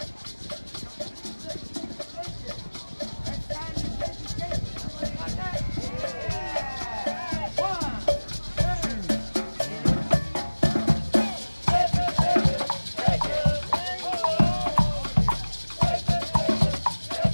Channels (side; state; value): both; inverted; correlation -1.00